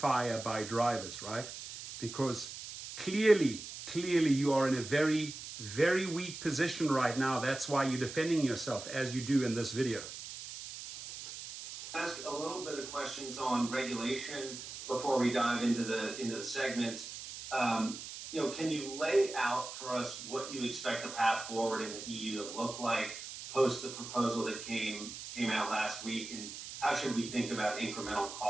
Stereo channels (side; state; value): right; noise; hiss, 10 dB below the sound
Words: by drivers, right? Because clearly you are in a very, very weak position right now. That's why you're defending yourself as you do in this video. Ask a little bit of questions on regulation before we dive into the segment. Can you lay out for us what you expect the path forward in the EU to look like post the proposal that came out last week, and how should we think about incremental